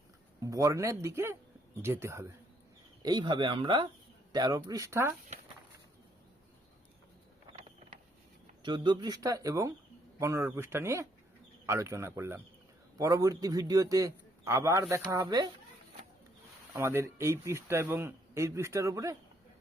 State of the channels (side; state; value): both; normal; correlation 0.70